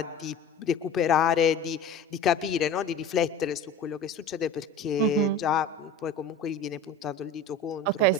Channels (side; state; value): right; quieter; 3.1 dB